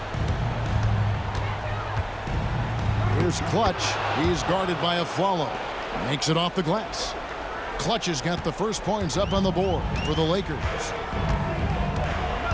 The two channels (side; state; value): both; identical; correlation 1.00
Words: Here's Clutch. He's guarded by Aflalo. Makes it off the glass. Clutch has got the first points up on the board for the Lakers.